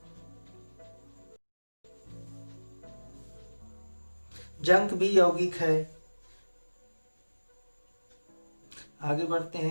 जंक भी यौगिक है। आगे बढ़ते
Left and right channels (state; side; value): inverted; both; correlation -1.00